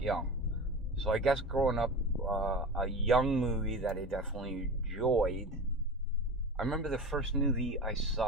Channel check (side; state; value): both; normal; correlation 0.30